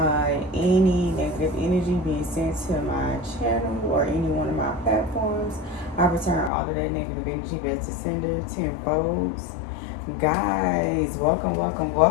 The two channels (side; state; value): right; drops out; at 6.5 s